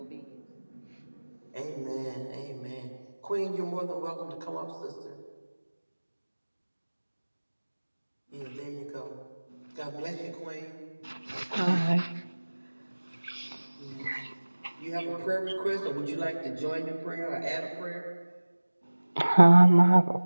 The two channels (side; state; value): both; inverted; correlation -1.00